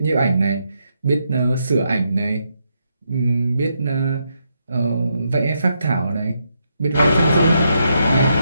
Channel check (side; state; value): both; inverted; correlation -0.80